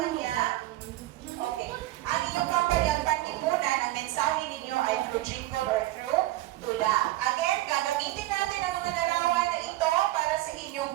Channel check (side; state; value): left; quieter; 16.7 dB